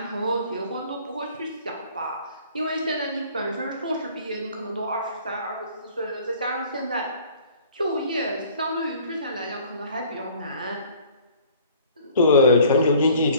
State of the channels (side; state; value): both; inverted; correlation -0.53